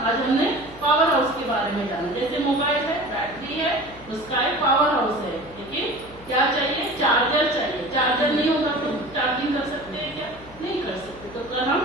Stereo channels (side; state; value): left; noise; hum, 20 dB below the sound